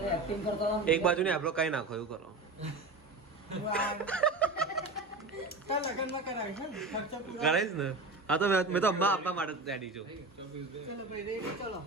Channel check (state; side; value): quieter; left; 3.3 dB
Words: એક્ટિંગ કરતો રહો. એક બાજુ ને આપણો કઈ નાખો એવું કરો કાલ લગનમાં કરાવીશ ને ખર્ચો પૂરો કરાઈશ ને હા તો મેં તો અમ્મા આપવા માટે રેડી છું ચલો ભાઈ રેડી ચલો